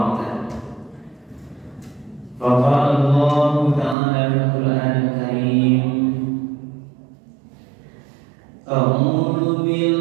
Faqala Allah ta'ala fil Qur'anil Karim, a'udzu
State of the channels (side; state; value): left; drops out; at 4.0 s